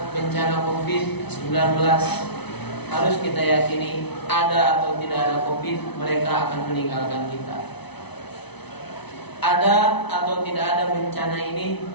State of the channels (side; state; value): right; late; 0.99 ms